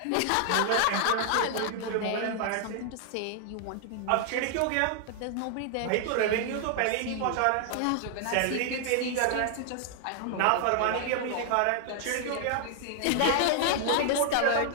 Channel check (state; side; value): different; both; correlation 0.00